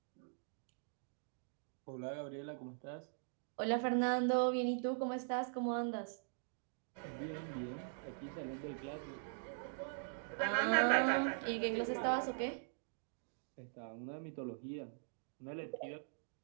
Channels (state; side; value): silent; left; digital silence